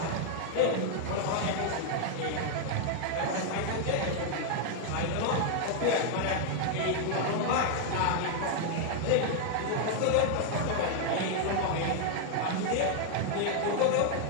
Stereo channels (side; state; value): both; different; correlation 0.00